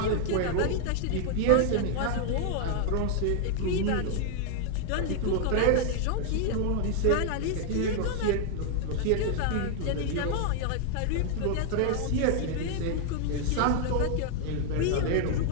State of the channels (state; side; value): different; both; correlation 0.00